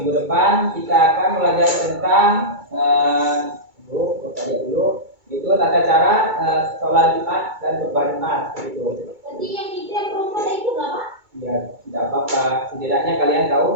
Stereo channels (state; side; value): late; left; 2.2 ms